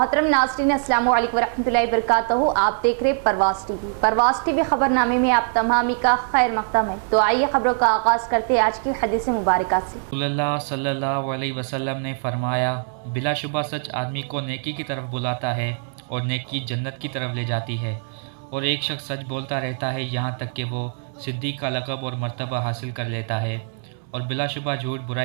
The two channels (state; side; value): drops out; left; at 6.5 s